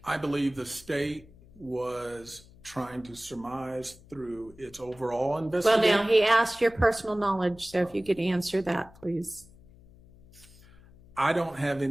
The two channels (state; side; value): noise; left; hum, 24 dB below the sound